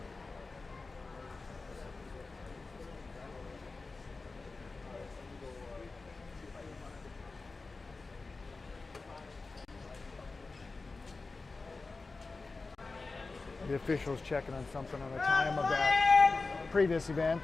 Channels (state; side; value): quieter; right; 3.8 dB